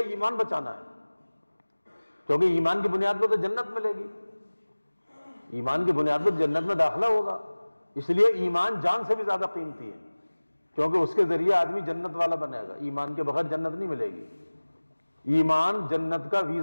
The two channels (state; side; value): inverted; both; correlation -1.00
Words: ایمان بچانا ہے، کیونکہ ایمان کی بنیاد پر تو جنت ملے گی، ایمان کی بنیاد پر جنت میں داخلہ ہوگا، اس لیے ایمان جان سے بھی زیادہ قیمتی ہے، کیونکہ اس کے ذریعے آدمی جنت والا بنے گا، ایمان کے بغیر جنت نہیں ملے گی۔ ایمان جنت کا